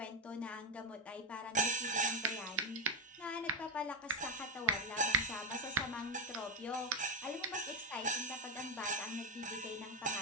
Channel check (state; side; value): normal; both; correlation 0.05